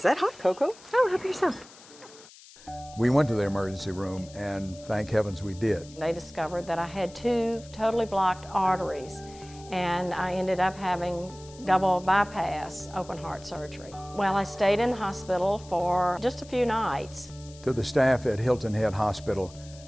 that hot cocoa? Oh, help yourself. We went to the emergency room, and thank heavens we did. They discovered that I had 2 totally blocked arteries, and I ended up having double bypass open heart surgery. Well, I stayed in the hospital for just a few nights. To the staff at Hilton Head Hospital,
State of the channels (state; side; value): noise; left; hiss, 21 dB below the sound